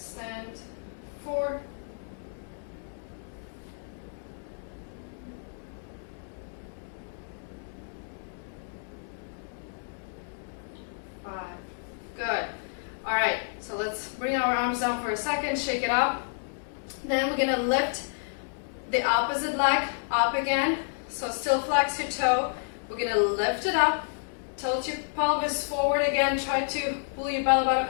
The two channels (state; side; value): silent; right; digital silence